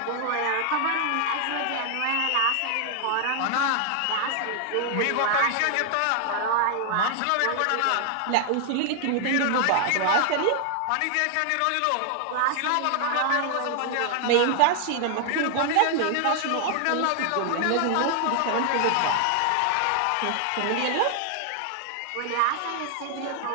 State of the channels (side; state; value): both; different; correlation 0.00